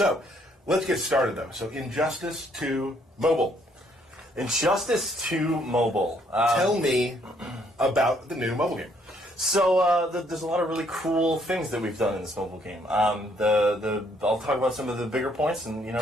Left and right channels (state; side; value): normal; both; correlation 0.68